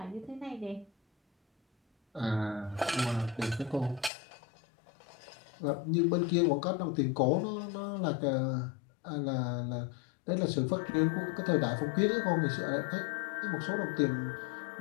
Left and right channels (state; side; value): drops out; right; at 4.1 s